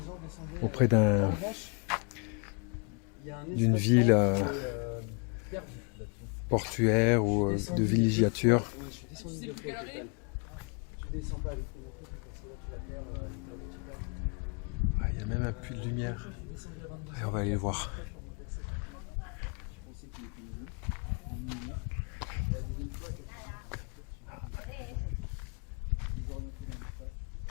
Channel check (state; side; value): quieter; right; 35.8 dB